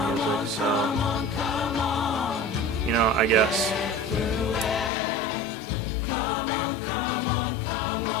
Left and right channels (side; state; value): right; drops out; at 4.9 s